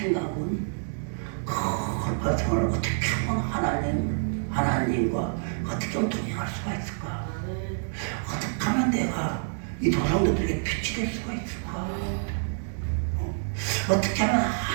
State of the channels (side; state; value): left; silent; digital silence